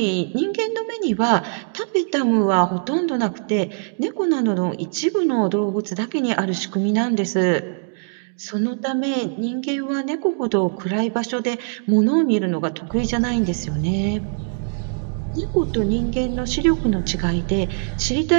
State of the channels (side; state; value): left; silent; digital silence